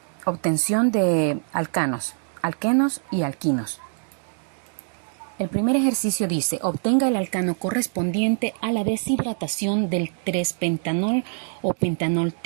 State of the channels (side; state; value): left; silent; digital silence